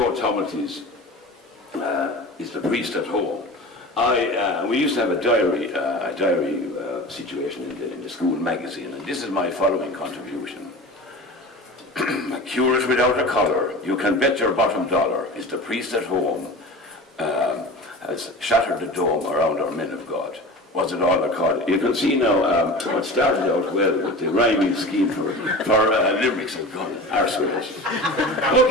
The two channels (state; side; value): normal; both; correlation 0.34